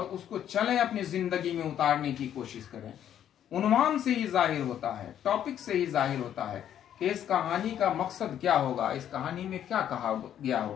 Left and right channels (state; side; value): quieter; right; 10.2 dB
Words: उसको चलें, अपनी जिंदगी में उतारने की कोशिश करें। उन्वान से ही जाहिर होता है, टॉपिक से ही जाहिर होता है कि इस कहानी का मकसद क्या होगा, इस कहानी में क्या कहा गया